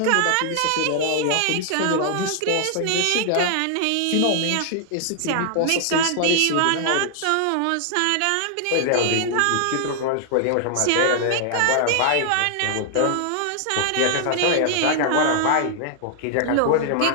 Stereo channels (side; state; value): both; different; correlation 0.00